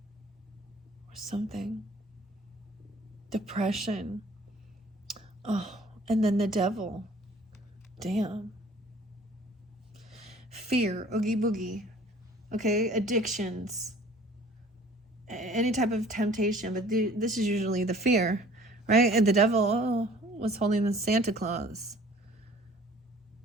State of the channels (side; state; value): both; normal; correlation 0.51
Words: Or something. Depression. Oh, and then the devil. Damn. Fear. Oogie boogie. Okay, addictions. Any type of temptation. But this is usually the fear, right? And the devil was holding the Santa Claus.